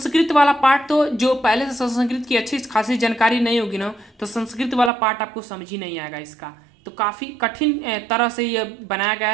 वाला पार्ट तो जो पहले से संस्कृत की अच्छी खासी जानकारी नहीं होगी ना, तो संस्कृत वाला पार्ट आपको समझ ही नहीं आएगा इसका। तो काफ़ी कठिन तरह से ये बनाया गया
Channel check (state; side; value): drops out; left; at 4.9 s